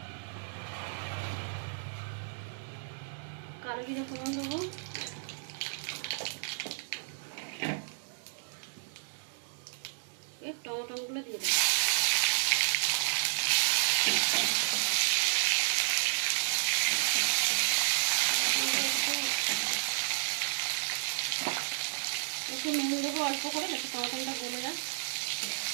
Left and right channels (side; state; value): left; silent; digital silence